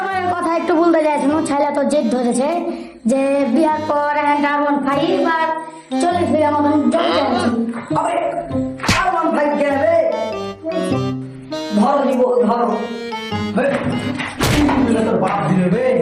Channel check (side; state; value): both; identical; correlation 1.00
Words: কথা একটু বলতে চাইছিলাম ছেলে তো জেদ ধরেছে যে বিয়ার পর ডাবন খাই বা 40 বিঘা মতন জমি আছে আবে আর মন ভাই গেলে ধরো নিব ধরো তোর বাপ দিলে বে